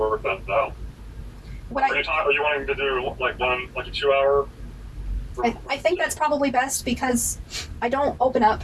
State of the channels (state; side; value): identical; both; correlation 1.00